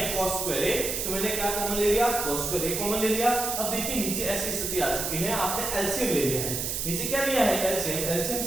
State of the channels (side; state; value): right; noise; hiss, 2 dB below the sound